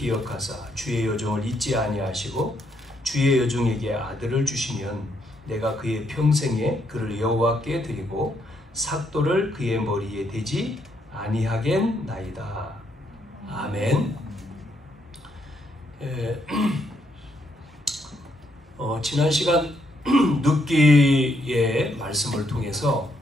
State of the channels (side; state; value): both; normal; correlation 0.75